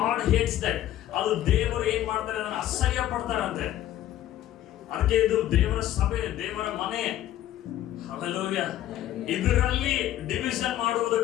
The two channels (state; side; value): quieter; right; 12.8 dB